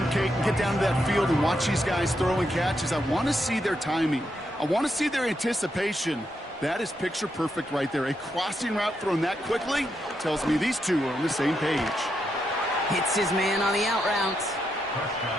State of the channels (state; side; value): normal; both; correlation 0.82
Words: Kate, and get down to that field and watch these guys throw and catch is I want to see their timing. I want to see their anticipation. That is picture perfect right there. A crossing route thrown that quickly tells me these two are on the same page. Hits his man on the out route.